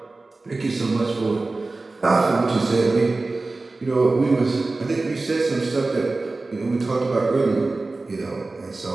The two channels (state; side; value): quieter; left; 3.4 dB